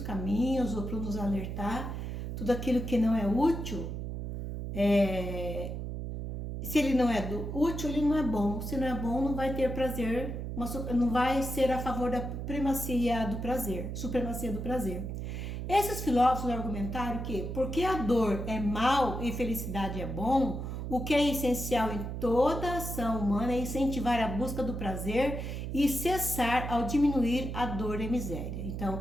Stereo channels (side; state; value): right; noise; hum, 5 dB below the sound